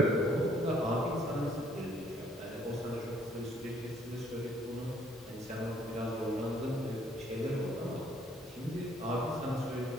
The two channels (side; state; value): both; normal; correlation 0.63